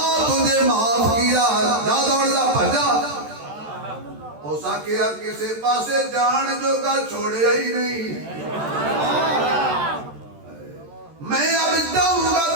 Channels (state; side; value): late; left; 13 ms